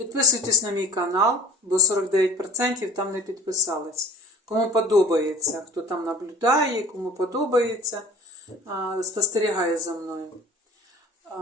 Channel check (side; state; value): both; normal; correlation 0.44